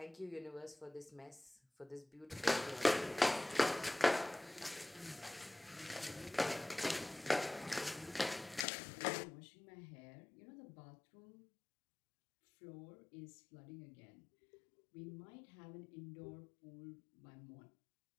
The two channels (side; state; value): right; drops out; at 8.7 s